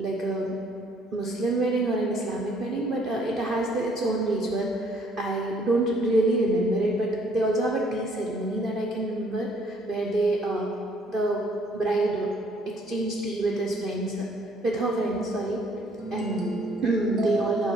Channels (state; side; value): normal; both; correlation 0.62